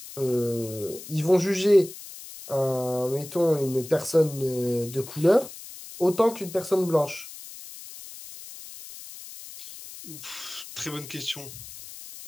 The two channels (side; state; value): left; noise; hiss, 14 dB below the sound